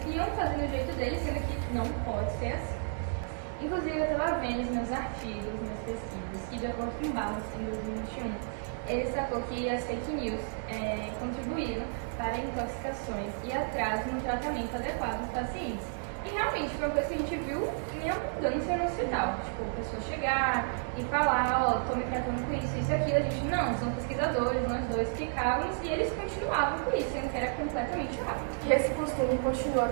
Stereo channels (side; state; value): left; silent; 57 dB below the other